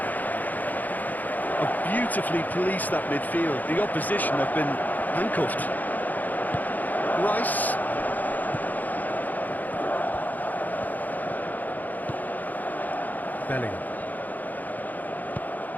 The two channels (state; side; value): late; right; 0.082 ms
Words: Beautifully policed that midfield. The opposition have been handcuffed. Rice. Bellingham.